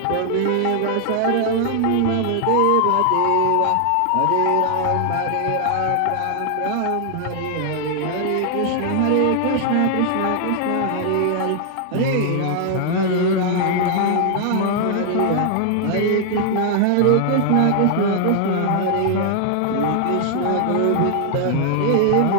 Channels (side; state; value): both; different; correlation 0.00